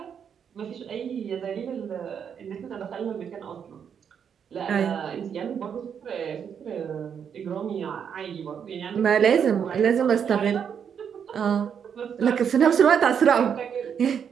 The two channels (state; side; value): quieter; left; 7.7 dB